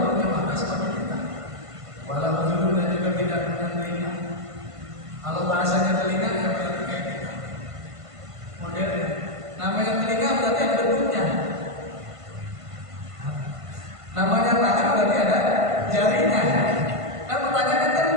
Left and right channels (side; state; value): left; late; 1.5 ms